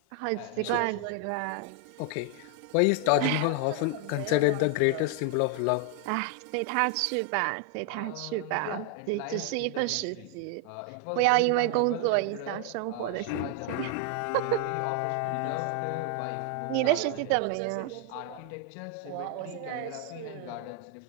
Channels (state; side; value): different; both; correlation 0.00